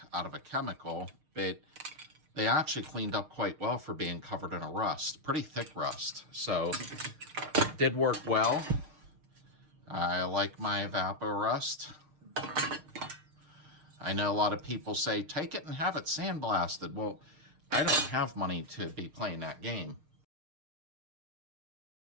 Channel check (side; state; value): left; late; 6.6 ms